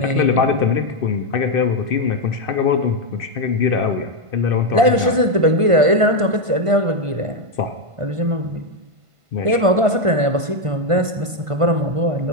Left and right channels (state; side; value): late; left; 1.5 ms